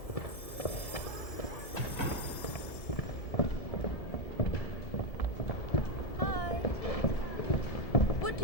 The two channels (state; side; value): late; right; 1.7 ms